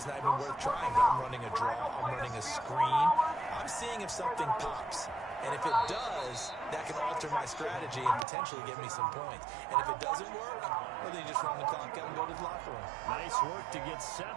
not even worth trying, but I'm running a draw. I'm running a screen. I'm seeing if something pops. And if it does, that can alter my strategy and potentially get me some points. And if it doesn't work, well, then you just run the clock out and go to the locker room. Nice work to get 7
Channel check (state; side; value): drops out; left; at 8.2 s